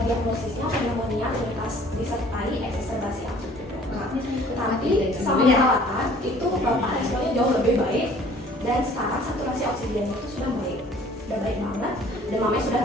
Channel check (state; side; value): normal; both; correlation 0.53